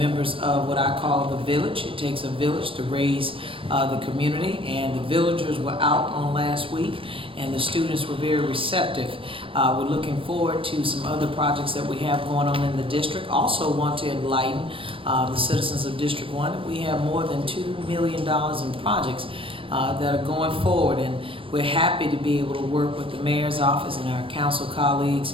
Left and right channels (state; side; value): late; left; 0.26 ms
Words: of what I call the village. It takes a village to raise the community, and the villagers were out on last week, and the students were very receptive. We're looking forward to some other projects that we have going on in the district. Also want to enlighten the citizens of District 1. We have more than $2 million in projects that are going forward, and we're happy to be able to work with the mayor's office and our council colleagues